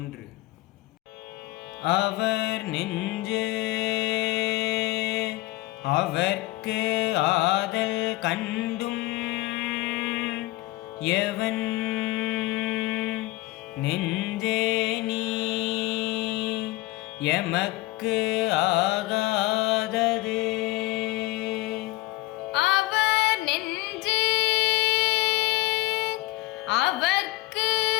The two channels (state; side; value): quieter; right; 19.9 dB